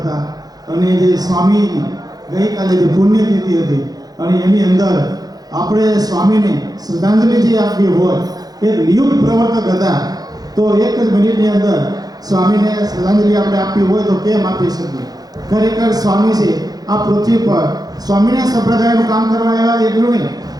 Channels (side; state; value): left; late; 0.19 ms